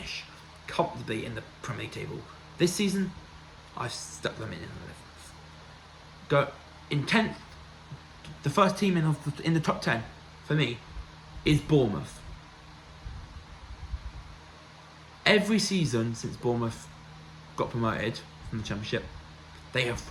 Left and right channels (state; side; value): identical; both; correlation 1.00